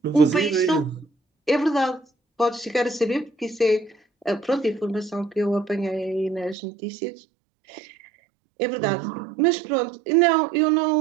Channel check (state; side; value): drops out; left; at 6.6 s